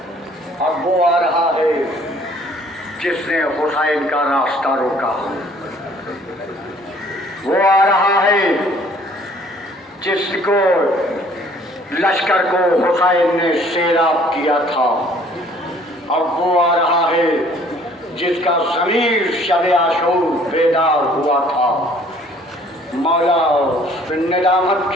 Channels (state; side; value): normal; both; correlation 0.57